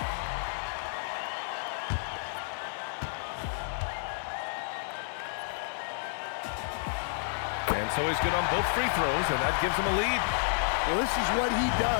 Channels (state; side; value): silent; right; digital silence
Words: And so he's good on both free throws, and that gives him a lead. Well, this is what he